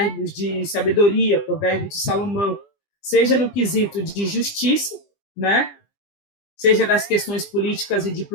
de sabedoria, provérbios de Salomão, seja no quesito de justiça, né, seja das questões políticas e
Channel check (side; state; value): right; late; 20 ms